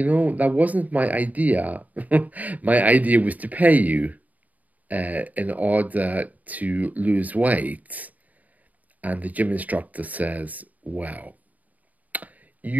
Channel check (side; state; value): left; late; 0.075 ms